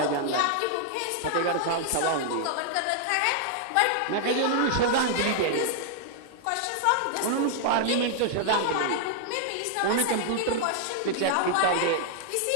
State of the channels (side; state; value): both; different; correlation -0.01